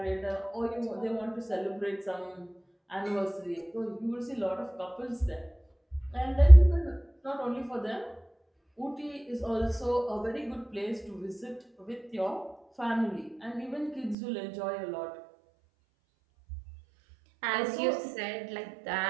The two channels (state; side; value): drops out; left; at 14.2 s